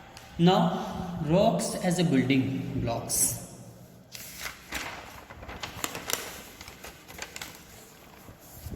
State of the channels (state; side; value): identical; both; correlation 1.00